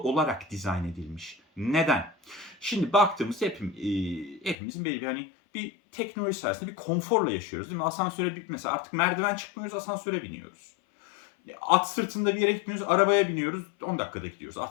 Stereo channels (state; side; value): drops out; right; at 4.5 s